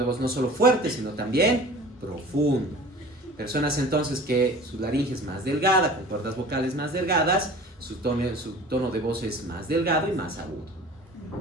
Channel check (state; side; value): normal; both; correlation 0.42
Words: voz no solo fuerte, sino también profundo. Personas entonces que su laringe es más delgada, con cuerdas vocales más delgadas, su tono de voz es más delgado y más agudo.